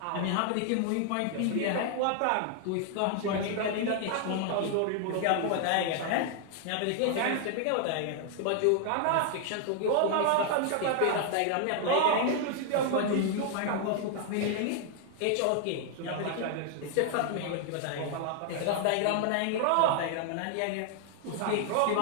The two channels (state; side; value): different; both; correlation 0.00